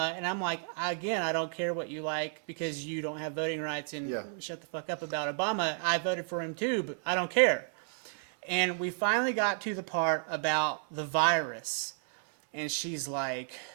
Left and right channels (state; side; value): silent; left; 56 dB below the other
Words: and I'm like, again, I don't care what you like because you don't have voting rights and shut the fuck up about Obama. I voted for him too, but I don't care. And we finally got to the part about the virus, and she's like,